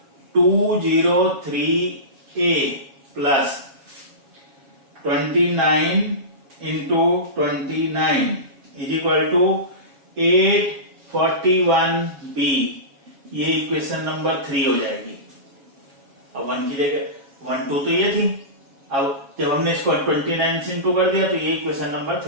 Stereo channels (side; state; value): left; late; 7.3 ms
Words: 203A plus 29 into 29 is equal to 841B। ये इक्वेशन नंबर 3 हो जाएगी। अब 1 की जगह 1 2 तो ये थी, अब जब हमने इसको 29 से इंटू कर दिया तो ये इक्वेशन नंबर